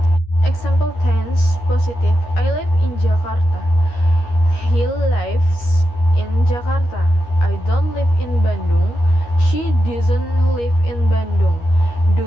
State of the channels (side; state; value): right; late; 13 ms